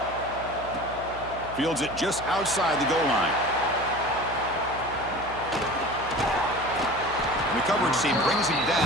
Fields it just outside the goal line. And the coverage team brings him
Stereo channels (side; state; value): right; noise; hum, 14 dB below the sound